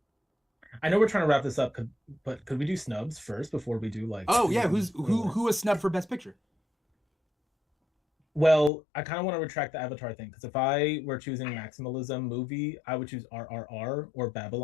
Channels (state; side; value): drops out; right; at 8.7 s